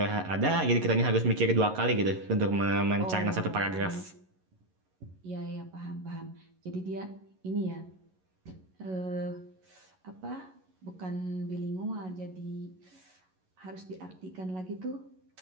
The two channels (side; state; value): left; late; 11 ms